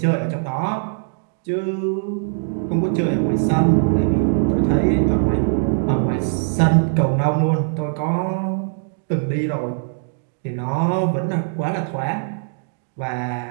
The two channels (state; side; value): silent; left; digital silence